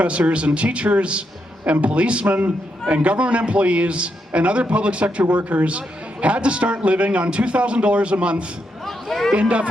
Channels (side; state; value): both; normal; correlation 0.81